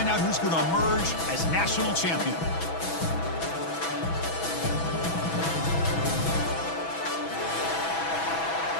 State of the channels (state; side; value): late; right; 6.1 ms